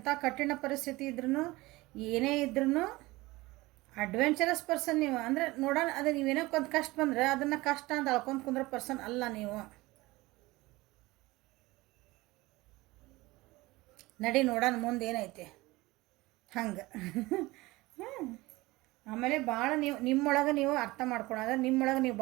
ಕಠಿಣ ಪರಿಸ್ಥಿತಿ ಇದ್ರೂ, ಏನೇ ಇದ್ರೂ ಅಡ್ವೆಂಚರಸ್ ಪರ್ಸನ್ ನೀವು. ಅಂದರೆ ನೋಡೋಣ, ಅದು ನೀವೇನೋ ಒಂದು ಕಷ್ಟ ಬಂದರೆ ಅದನ್ನು ಕಷ್ಟ ಅಂತ ಅಳ್ಕೊಂಡು ಕುಂದ್ರೋ ಪರ್ಸನ್ ಅಲ್ಲ ನೀವು. ನಡಿ ನೋಡೋಣ ಮುಂದೆ ಏನೈತೆ ಹಂಗೆ. ಆಮೇಲೆ ಭಾಳ ನಿಮ್ಮೊಳಗೆ ನೀವು ಅರ್ಥ ಮಾಡ್ಕೊಳೋದು, ನಿಮ್ಮೊಳಗೆ ನೀವು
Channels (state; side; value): quieter; left; 20.6 dB